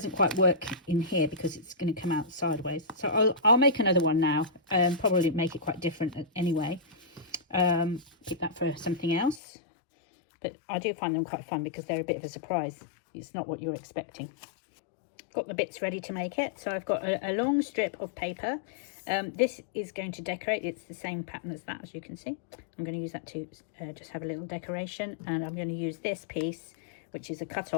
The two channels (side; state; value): right; drops out; at 9.4 s